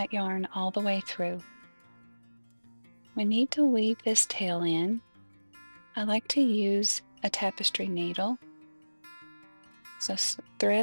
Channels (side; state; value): both; inverted; correlation -1.00